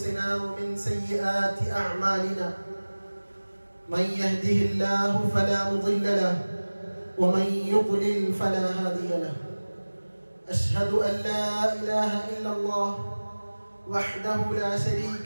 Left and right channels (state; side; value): inverted; both; correlation -1.00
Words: ومن سيئات أعمالنا من يهده الله فلا مضل له ومن يضلل فلا هادي له أشهد أن لا إله إلا الله وحده لا